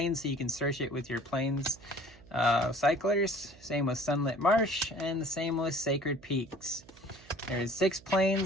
so you can search it with your plains cyclers. Same with Sunlit Marsh, and the same with Sacred Peaks. There's 6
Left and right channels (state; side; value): noise; right; hum, 24 dB below the sound